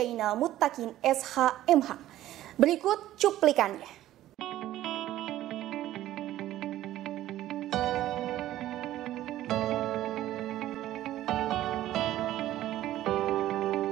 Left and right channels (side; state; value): left; quieter; 13.9 dB